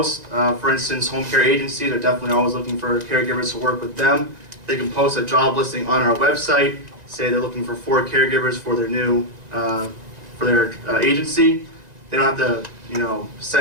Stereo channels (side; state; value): left; late; 1.9 ms